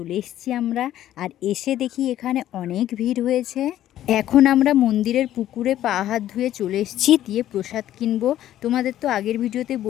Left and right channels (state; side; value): quieter; right; 12.6 dB